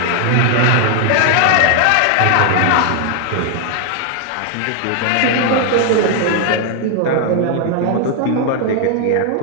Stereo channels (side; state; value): both; different; correlation 0.00